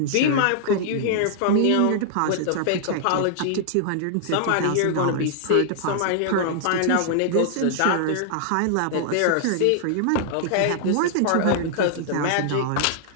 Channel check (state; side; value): different; both; correlation -0.01